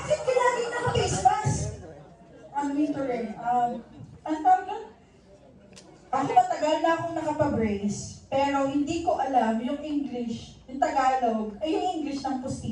ka laging naka-face mask? Ang winter eh. Ang tawag nun? Ako matagal na akong nakapabrace, pero hindi ko alam yung English, yung Tagalog, ay yung English ng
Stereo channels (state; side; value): identical; both; correlation 1.00